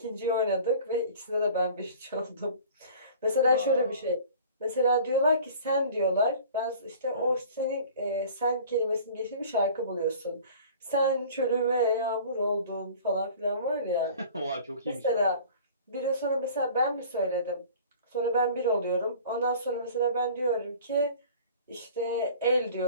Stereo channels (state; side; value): inverted; both; correlation -0.45